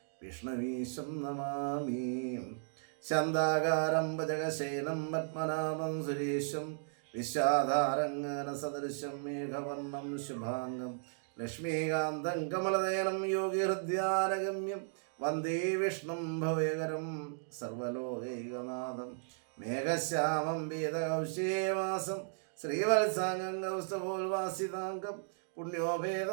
വിഷ്ണുവീശം നമാമി ശാന്താകാരം ഭജകശേനം പത്മനാഭം സുരേശം വിശ്വാധാരംഗനസദൃശം മേഘവർണം ശുഭാംഗം ലക്ഷ്മീകാന്തം കമലനയനം യോഗിഹൃദ്യാനഗമ്യം വന്ദേ വിഷ്ണും ഭവയകരം സർവലോകൈകനാഥം മേഘശ്യാമം വേദകൗശേവാസം ശ്രീവത്സാംഗം കൗസ്തപോൽവാസിതാംഗം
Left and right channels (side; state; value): left; silent; digital silence